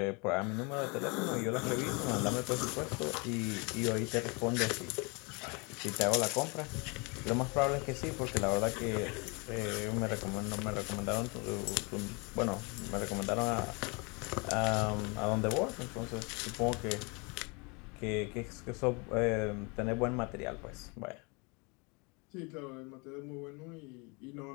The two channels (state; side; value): quieter; right; 30.5 dB